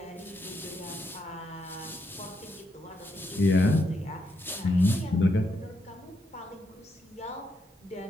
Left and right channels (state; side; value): normal; both; correlation 0.80